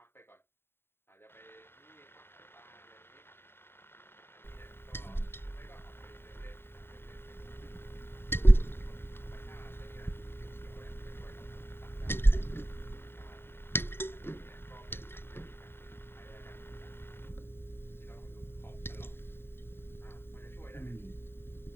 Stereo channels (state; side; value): late; right; 0.11 ms